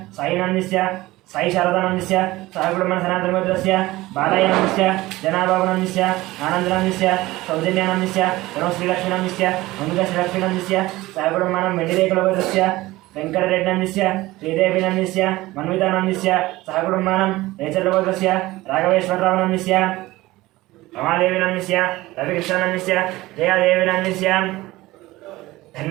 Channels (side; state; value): left; quieter; 18.6 dB